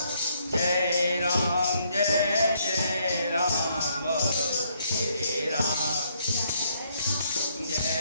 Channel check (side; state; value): both; inverted; correlation -0.71